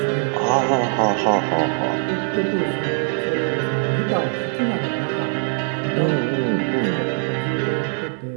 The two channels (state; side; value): silent; left; digital silence